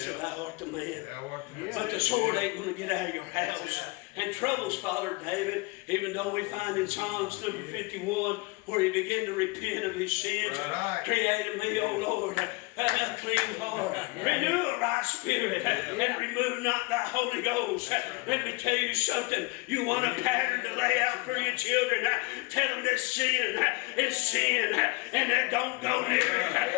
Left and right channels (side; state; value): right; quieter; 26.6 dB